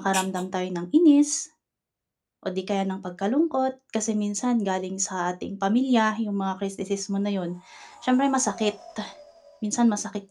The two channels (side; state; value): both; identical; correlation 1.00